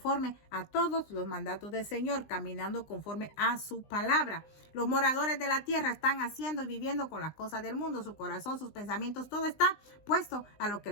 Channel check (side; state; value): right; late; 20 ms